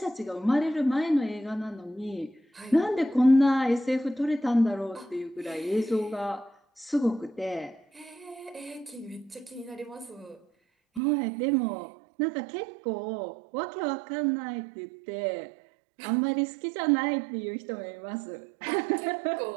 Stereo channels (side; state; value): left; drops out; at 11.0 s